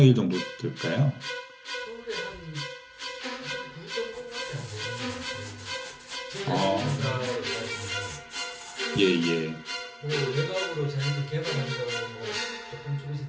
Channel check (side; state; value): both; identical; correlation 1.00